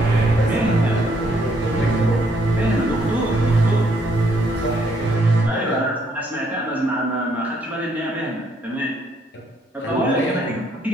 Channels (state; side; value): normal; both; correlation 0.70